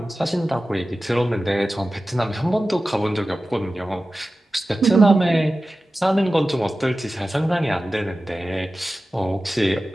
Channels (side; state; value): both; normal; correlation 0.95